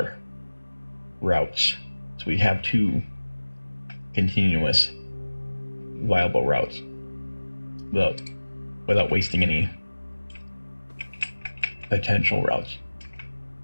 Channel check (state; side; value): inverted; both; correlation -1.00